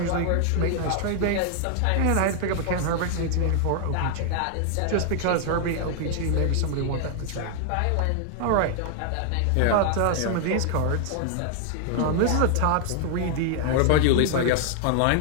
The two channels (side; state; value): both; different; correlation 0.00